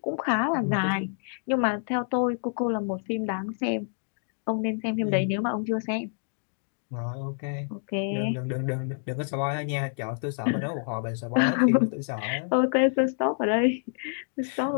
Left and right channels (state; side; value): silent; right; digital silence